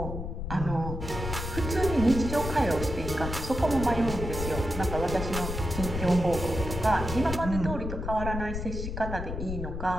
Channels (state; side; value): noise; left; rumble, 5 dB below the sound